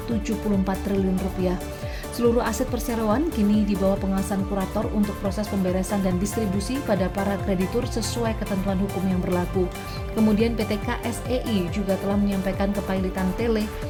triliun rupiah. Seluruh aset perseroan kini di bawah pengawasan kurator untuk proses pemberesan dan distribusi pada para kreditur sesuai ketentuan hukum yang berlaku. Kemudian PT KSEI juga telah menyampaikan kepailitan Tele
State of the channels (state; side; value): identical; both; correlation 1.00